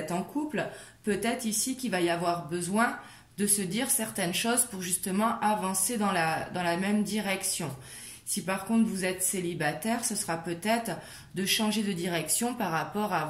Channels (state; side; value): identical; both; correlation 1.00